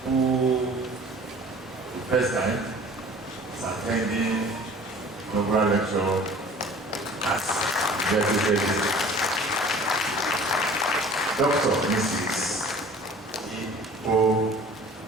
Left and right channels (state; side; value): normal; both; correlation 0.47